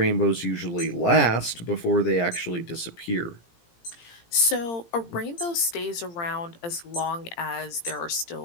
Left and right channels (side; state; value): right; late; 17 ms